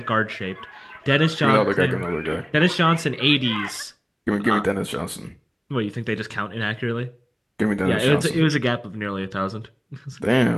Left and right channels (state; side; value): identical; both; correlation 1.00